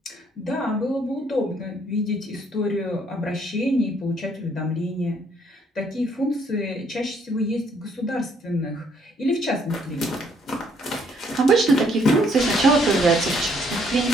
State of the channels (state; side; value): normal; both; correlation 0.67